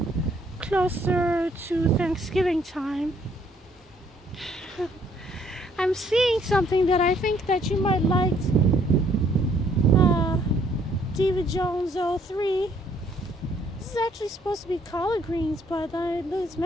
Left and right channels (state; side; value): normal; both; correlation 0.65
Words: closer to Thanksgiving time. I'm seeing something that I think that you might like. Diva Jones 03. This is actually supposed to be collard greens, but it's